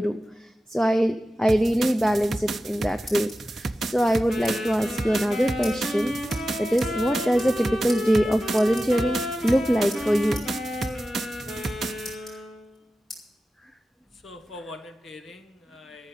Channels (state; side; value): normal; both; correlation 0.93